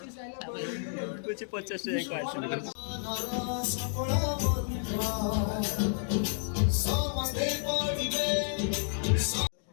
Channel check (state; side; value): silent; right; digital silence